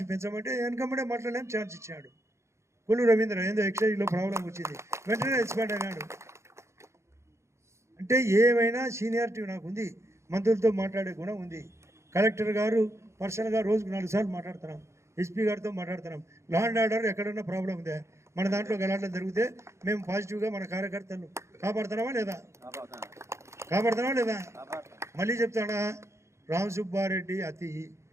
పెంచమంటే వెనకమ్మడే మాట్లాడలేం ఛాన్స్ ఇచ్చాడు. కొల్లు రవీంద్ర ఏందో ఎక్సైజ్లో ప్రాబ్లం వచ్చింది, వెంటనే ఎక్స్పైర్డ్ అయినాడు. అంటే ఏమైనా సీనియారిటీ నాకు ఉంది, మంత్రులతో మాట్లాడే గుణం ఉంది. కలెక్టర్ గారు పర్సనల్గా రోజుకు 4 సార్లు మాట్లాడుతున్నాం, ఎస్పీ గారితో మాట్లాడుతున్నాం. లా అండ్ ఆర్డర్ ఎక్కడన్నా ప్రాబ్లం ఉందా, మన దాంట్లో గలాటలు జరిగితే మేము పాజిటివ్గా మన కార్యకర్తలు కాపాడుతున్నామా లేదా? మళ్ళీ చెప్తాడా, రామ్ సుబ్బారెడ్డి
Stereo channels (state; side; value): late; left; 0.14 ms